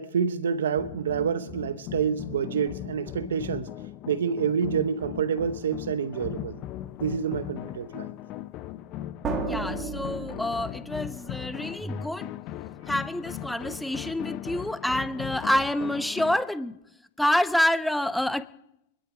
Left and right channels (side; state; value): both; normal; correlation 0.26